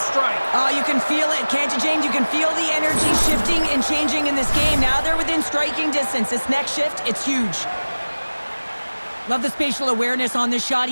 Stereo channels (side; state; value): both; inverted; correlation -1.00